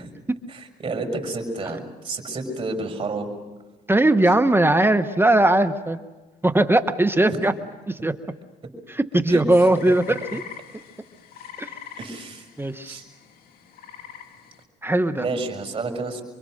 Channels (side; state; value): both; normal; correlation 0.84